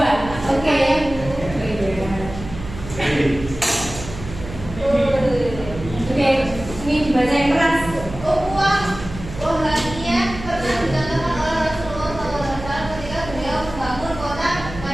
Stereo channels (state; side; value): noise; right; hum, 12 dB below the sound